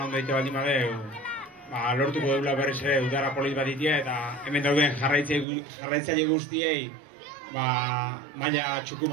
egite baldin badeu, lortuko deula berriz ere udara polit batitia eta hemen dauden jarraitzaile guztiei maila txuku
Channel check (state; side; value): drops out; left; at 5.5 s